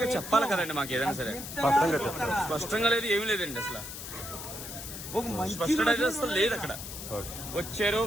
గా చెప్పాలి కదండి మాకు ఏదైనా సరే. స్పష్టంగా లేదు, ఏమీ లేదండి అసలు. స్పష్టత అయితే అసలు లేదు. అక్కడ వచ్చారు,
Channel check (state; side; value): noise; left; hiss, 9 dB below the sound